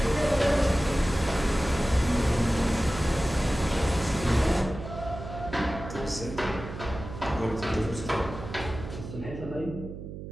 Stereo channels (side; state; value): right; noise; hum, 10 dB below the sound